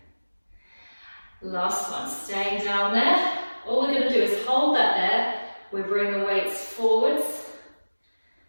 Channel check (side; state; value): both; inverted; correlation -1.00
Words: Last one, staying down there. All we're going to do is hold that there. We bring the weights forwards